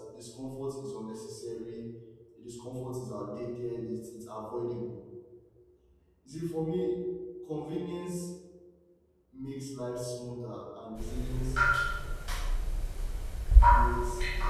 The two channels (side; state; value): both; identical; correlation 1.00